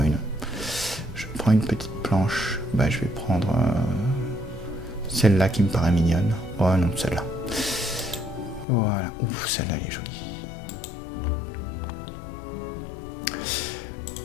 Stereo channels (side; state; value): right; drops out; at 8.7 s